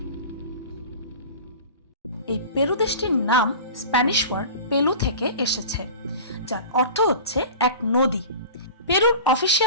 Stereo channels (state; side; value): inverted; both; correlation -0.36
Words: এই পেরু দেশটির নাম স্প্যানিশ ওয়ার্ড পেলু থেকে এসেছে, যার অর্থ হচ্ছে এক নদী। পেরুর